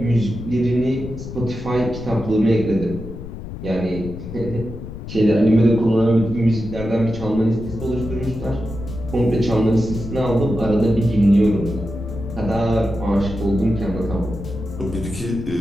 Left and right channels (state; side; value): noise; left; rumble, 10 dB below the sound